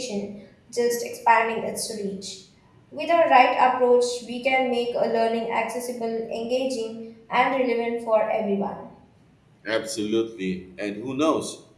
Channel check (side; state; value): both; identical; correlation 1.00